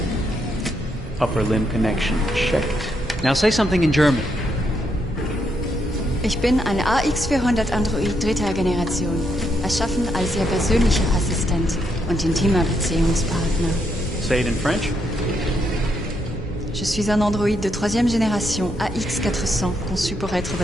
Upper limb connection checked. Now say something in German. Ich bin ein AX400 Android 3. Generation, erschaffen als Ihr persönlicher Assistent und intimer Beziehungspartner. Say it in French. Je suis un androïde de 3e génération AX400, conçu pour être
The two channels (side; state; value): both; normal; correlation 0.78